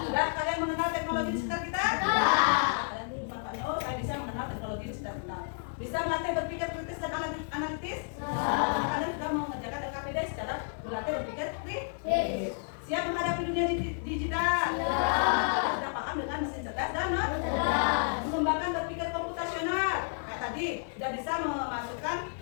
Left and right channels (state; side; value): silent; right; digital silence